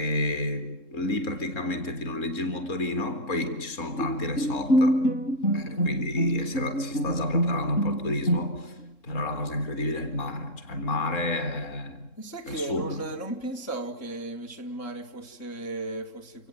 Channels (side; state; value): right; late; 3.7 ms